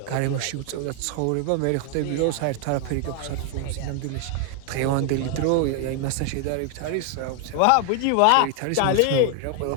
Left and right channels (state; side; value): different; both; correlation 0.00